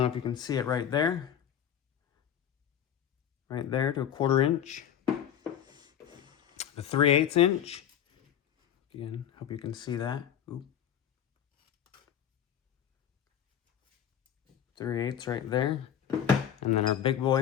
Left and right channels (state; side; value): quieter; right; 9.5 dB